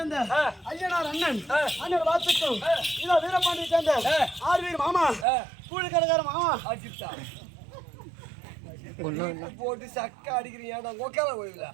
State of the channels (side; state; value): left; drops out; at 5.2 s